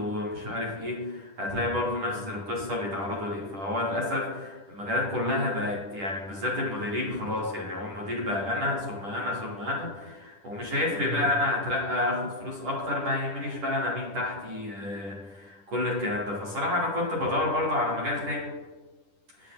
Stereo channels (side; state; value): left; late; 10 ms